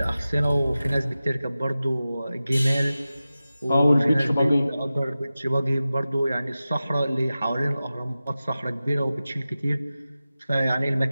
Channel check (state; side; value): inverted; both; correlation -0.95